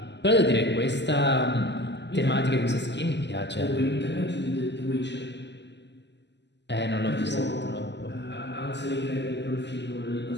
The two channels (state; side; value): late; right; 0.51 ms